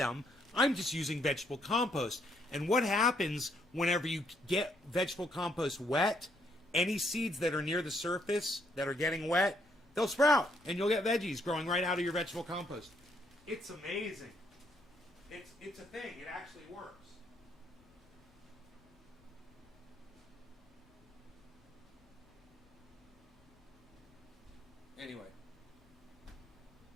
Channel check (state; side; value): noise; left; rumble, 30 dB below the sound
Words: I'm just using vegetable compost. And what happens whenever you get vegetable compost wet, any seeds that are near the surface that are getting wet, they'll sprout, and you'll get veggies growing right out of your vegetable compost. It's amazing. It's a thing. It actually works. Anyway.